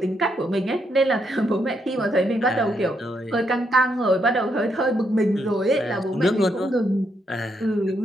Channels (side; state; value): both; normal; correlation 0.78